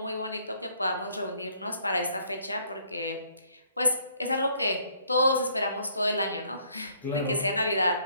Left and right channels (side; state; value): both; inverted; correlation -0.64